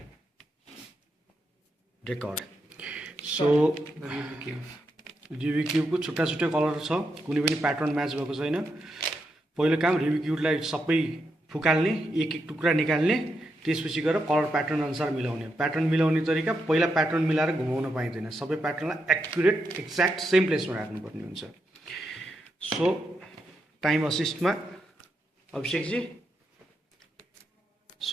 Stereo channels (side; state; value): both; normal; correlation 0.83